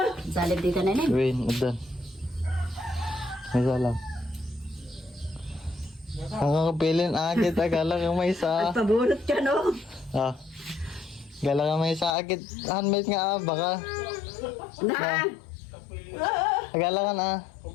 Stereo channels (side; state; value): right; drops out; at 12.2 s